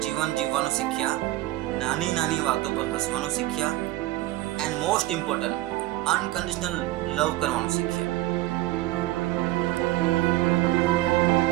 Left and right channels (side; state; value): left; quieter; 17.3 dB